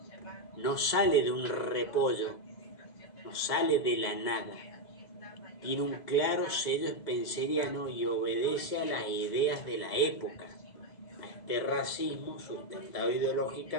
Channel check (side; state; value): right; late; 2.0 ms